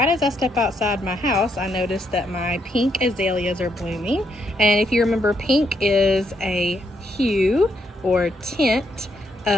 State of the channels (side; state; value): both; normal; correlation 0.76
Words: as I step outside my house, I noticed that my pink azaleas are blooming. And if you remember, pink is a hue or tint